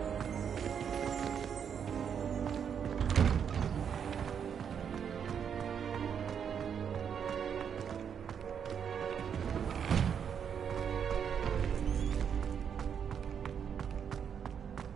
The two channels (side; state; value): left; quieter; 7.7 dB